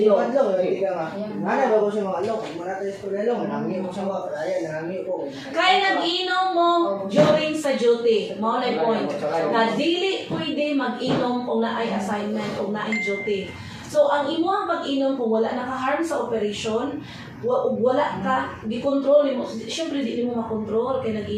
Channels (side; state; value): both; identical; correlation 1.00